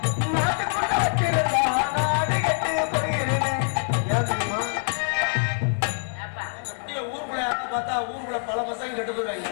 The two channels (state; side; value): silent; right; 62 dB below the other